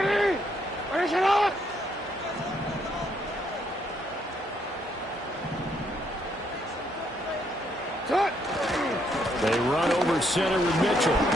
They run over center with Mitchell.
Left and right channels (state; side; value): normal; both; correlation 0.73